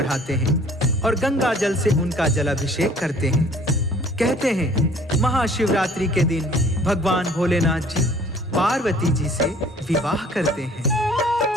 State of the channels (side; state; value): both; normal; correlation 0.53